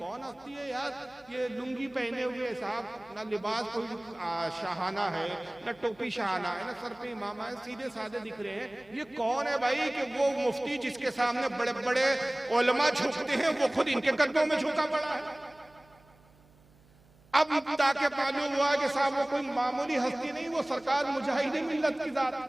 हस्ती है यार, ये लुंगी पहने हुए साहब, ना लिबास कोई शाहाना है, ना टोपी शाहाना है, ना सर पे इमामा है, सीधे साधे दिख रहे हैं। ये कौन है भाई कि वो मुफ्ती जिसके सामने बड़े बड़े उलमा झुकते हैं वो खुद इनके कदमों में झुका पड़ा है। अब ताकि मालूम हुआ कि साहब वो कोई मामूली हस्ती नहीं, वो सरकार मुजाहिद मिल्लत की जात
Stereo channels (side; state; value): right; noise; hum, 29 dB below the sound